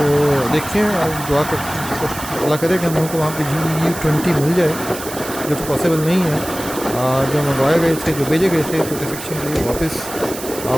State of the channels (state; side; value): noise; right; hiss, 11 dB below the sound